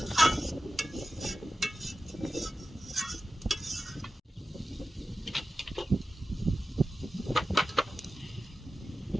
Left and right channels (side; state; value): both; normal; correlation 0.94